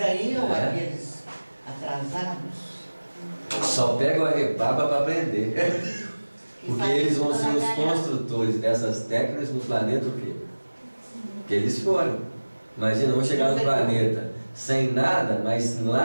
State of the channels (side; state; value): both; inverted; correlation -1.00